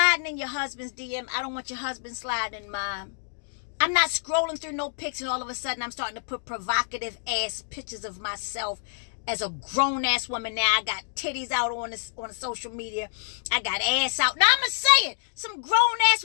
in your husband's DM. I don't want your husband sliding in mine. I'm not scrolling through no pics and all of a sudden I'm starting to put provocative-ass pictures of myself as a grown-ass woman. Now I got titties out on the social media. I got ass out. Now I'm going to say it. Some grown-ass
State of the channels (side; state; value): right; silent; digital silence